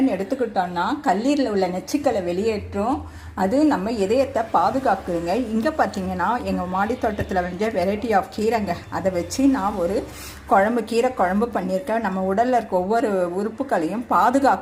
எடுத்துக்கிட்டோன்னா கல்லீரில் உள்ள நச்சுக்களை வெளியேற்றும். அது நம்ம இதயத்தை பாதுகாக்குதுங்க. இங்கே பார்த்தீங்கன்னா எங்கள் மாடி தோட்டத்தில் விளைஞ்ச வெரைட்டி ஆஃப் கீரைங்க, அதை வச்சு நான் ஒரு கீரை குழம்பு பண்ணியிருக்கேன். நம்ம உடலில் இருக்க ஒவ்வொரு உறுப்புகளையும்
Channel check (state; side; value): identical; both; correlation 1.00